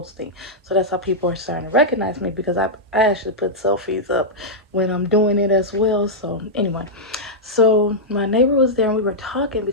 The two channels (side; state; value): both; normal; correlation -0.07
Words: So that's how people are starting to recognize me, because I actually put selfies up when I'm doing it as well. So anyway, so my neighbor was there and we were talking,